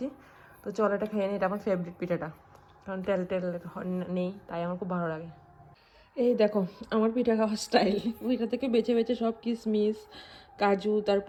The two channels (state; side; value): identical; both; correlation 1.00